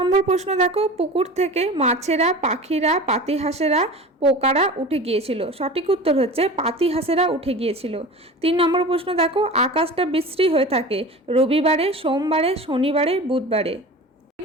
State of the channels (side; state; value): both; normal; correlation 0.35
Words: প্রশ্ন দেখো, পুকুর থেকে মাছেরা, পাখিরা, পাতিহাঁসেরা, পোকারা উঠে গিয়েছিল। সঠিক উত্তর হচ্ছে পাতিহাঁসেরা উঠে গিয়েছিল। 3 নম্বর প্রশ্ন দেখো, আকাশটা বিশ্রী হয়ে থাকে রবিবারে, সোমবারে, শনিবারে, বুধবারে।